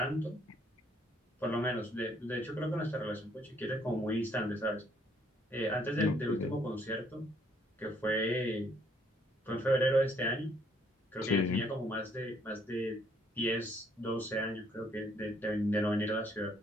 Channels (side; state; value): both; normal; correlation 0.66